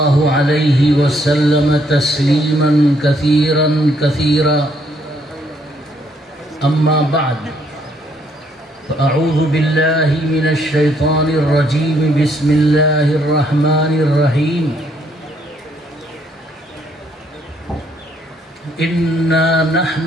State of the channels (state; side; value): normal; both; correlation 0.70